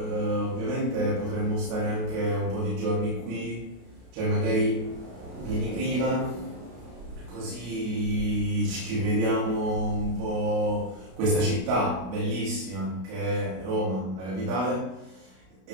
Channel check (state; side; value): late; left; 32 ms